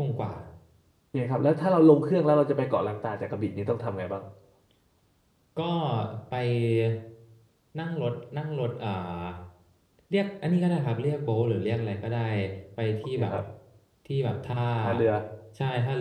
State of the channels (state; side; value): identical; both; correlation 1.00